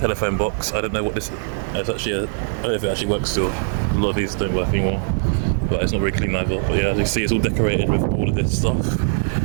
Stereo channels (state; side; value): silent; left; digital silence